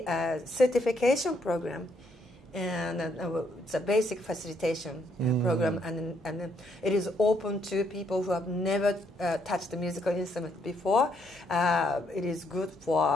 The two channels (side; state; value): both; normal; correlation 0.72